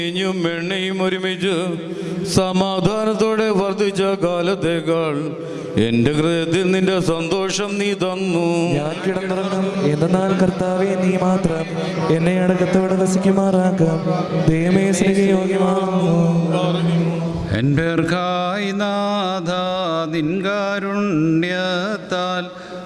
എണ്ണയും ഒരുമിച്ച് സമാധാനത്തോടെ വർദ്ധിച്ച കാലത്തേക്കാൾ എൻ്റെ ഹൃദയത്തിൽ നിന്റെ സന്തോഷം നീ തന്നു. ഞാൻ കിടന്നുറങ്ങും, എന്നാൽ കർത്താവെ നീ മാത്രം എന്നെ അടക്കത്തോടെ വസിക്കുമാറാക്കാം. ദൈവമേ, സ്നേഹയോഗ്യമാകുന്നു. എൻപേർക്കായി നാഥ നിൻ കാരുണ്യത്താൽ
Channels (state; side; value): identical; both; correlation 1.00